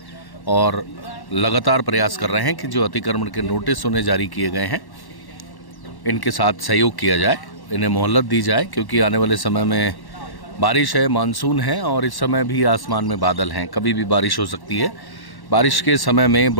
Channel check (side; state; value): right; late; 1.1 ms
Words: और लगातार प्रयास कर रहे हैं कि जो अतिक्रमण के नोटिस उन्हें जारी किए गए हैं इनके साथ सहयोग किया जाए, इन्हें मोहलत दी जाए, क्योंकि आने वाले समय में बारिश है, मानसून है और इस समय भी आसमान में बादल हैं, कभी भी बारिश हो सकती है। बारिश के समय में